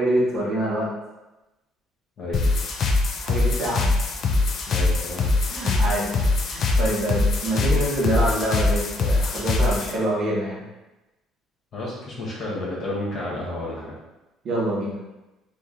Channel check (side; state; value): both; normal; correlation 0.71